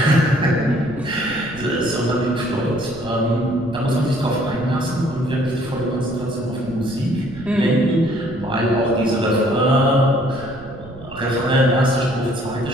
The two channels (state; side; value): noise; right; rumble, 17 dB below the sound